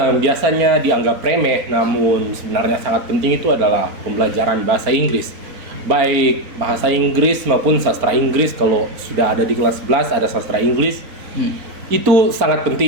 biasanya dianggap remeh namun sebenarnya sangat penting itu adalah pembelajaran bahasa Inggris. Baik bahasa Inggris maupun sastra Inggris. Kalau sudah ada di kelas 11 ada sastra Inggris, itu sangat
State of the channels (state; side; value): late; left; 4.0 ms